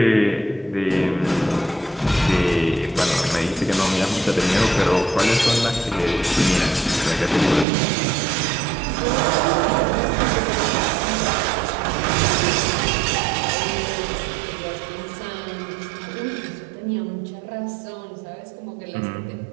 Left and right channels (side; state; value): left; drops out; at 7.7 s